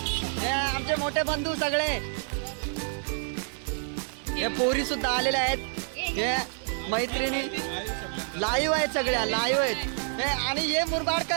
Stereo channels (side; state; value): left; silent; 59 dB below the other